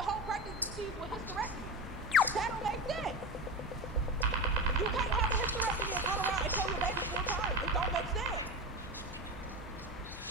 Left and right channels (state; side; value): normal; both; correlation 0.23